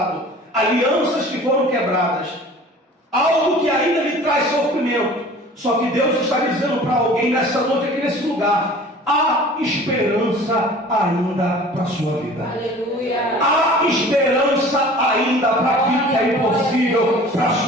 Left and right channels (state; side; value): normal; both; correlation 0.45